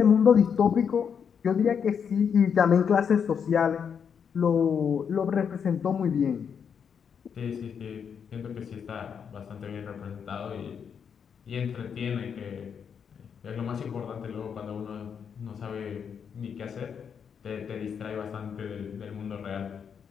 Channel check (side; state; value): right; quieter; 7.1 dB